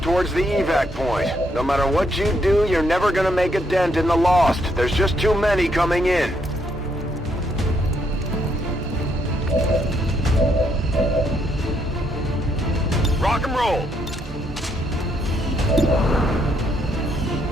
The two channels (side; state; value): both; normal; correlation 0.74